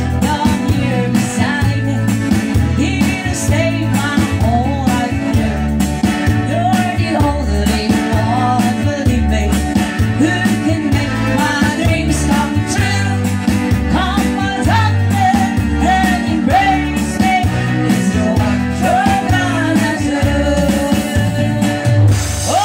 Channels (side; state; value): both; identical; correlation 1.00